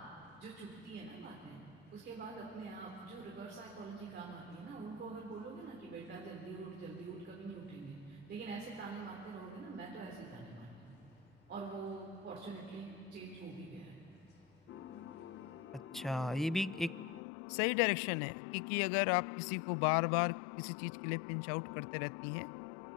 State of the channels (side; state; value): right; drops out; at 17.2 s